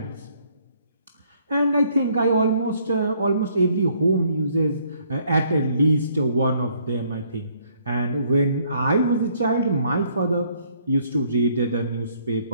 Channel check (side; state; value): both; inverted; correlation -0.66